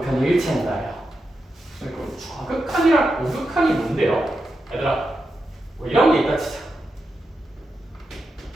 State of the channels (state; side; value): normal; both; correlation 0.88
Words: 일치한다예요. 좌극한이랑 우극한이 뭔데요? 얘들아, 뭐 이런 게 있다 치자.